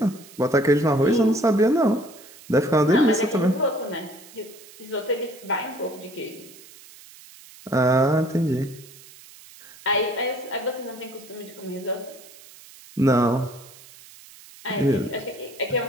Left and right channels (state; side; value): noise; right; hiss, 21 dB below the sound